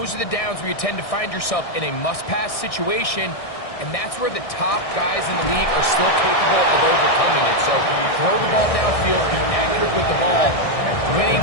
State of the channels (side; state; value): right; late; 1.6 ms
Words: are the downs where you tend to find yourself in a must-pass situation, and that's where the top guys in the league are still capable of overcoming it. So throw the ball downfield, be accurate with the ball.